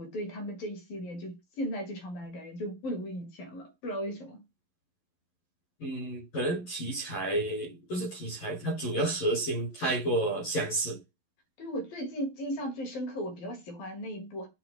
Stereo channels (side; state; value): right; late; 11 ms